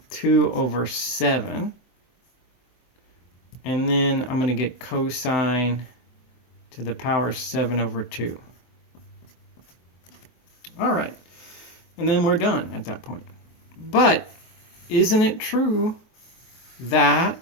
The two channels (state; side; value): late; right; 23 ms